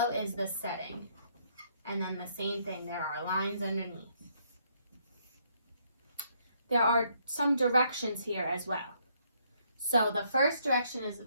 is the setting. And then the same thing, there are lines underneath. There are some directions here as well. So the first direction is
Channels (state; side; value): inverted; both; correlation -0.70